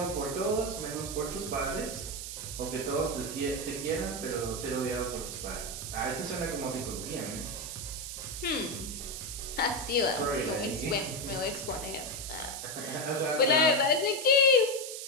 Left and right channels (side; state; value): right; noise; hiss, 7 dB below the sound